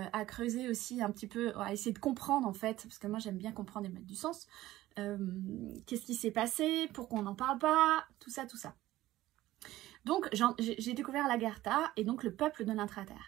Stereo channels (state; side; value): quieter; left; 15.8 dB